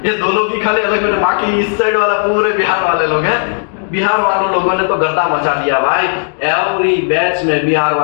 ये 2 लोग ही खाली अलग बैठे, बाकी इस साइड वाला पूरे बिहार वाले लोग हैं। बिहार वालों लोगों ने तो गर्दा मचा दिया भाई। एवरी बैच में बिहार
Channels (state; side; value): silent; right; digital silence